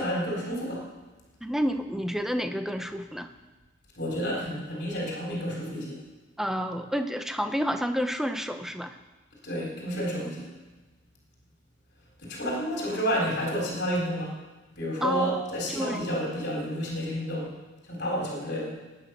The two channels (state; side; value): normal; both; correlation 0.52